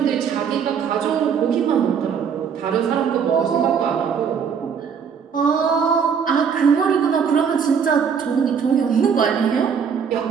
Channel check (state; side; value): quieter; left; 6.9 dB